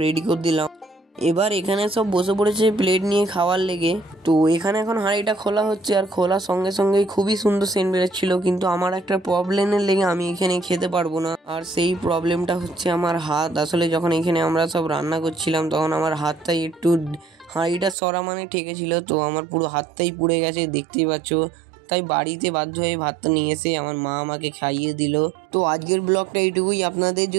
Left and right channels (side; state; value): left; drops out; at 17.9 s